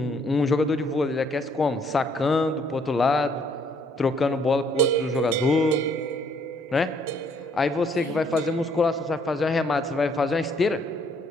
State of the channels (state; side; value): normal; both; correlation 0.65